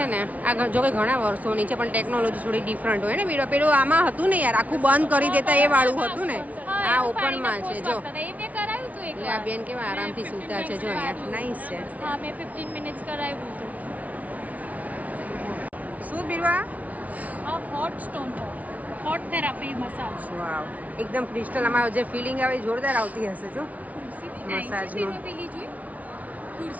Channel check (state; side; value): late; left; 0.070 ms